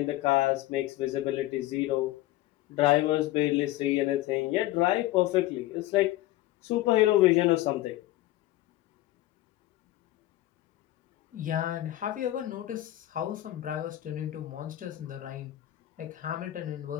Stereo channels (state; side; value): quieter; right; 15.9 dB